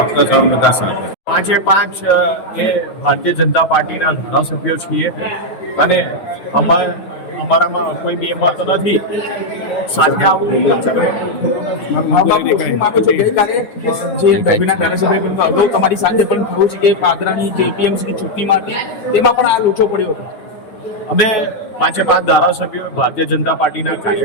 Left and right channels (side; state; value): right; late; 9.4 ms